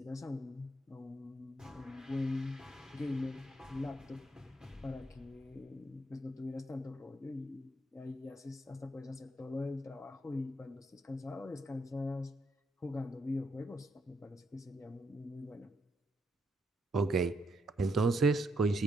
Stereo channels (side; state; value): both; normal; correlation 0.76